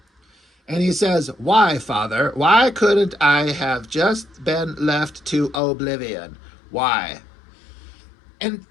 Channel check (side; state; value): right; drops out; at 5.6 s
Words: And he says, why, Father? Why couldn't I have just been left to oblivion? Why? And